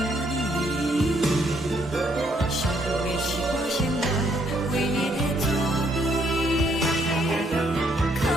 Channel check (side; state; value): both; normal; correlation 0.70